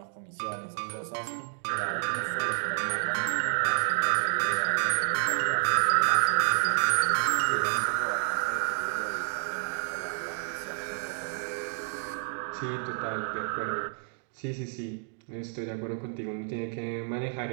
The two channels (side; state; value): left; silent; 58 dB below the other